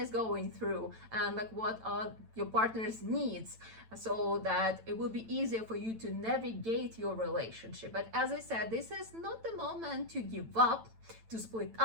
going through and like what are your partner's needs, so that it will be easier for you to navigate your relationship. But as I said, this is not the moment to give up, to split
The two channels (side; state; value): left; late; 9.0 ms